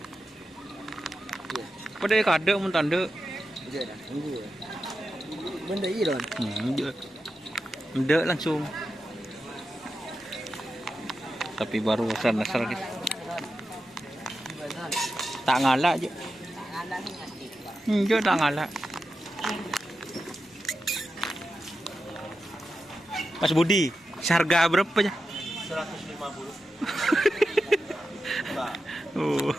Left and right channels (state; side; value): normal; both; correlation 0.90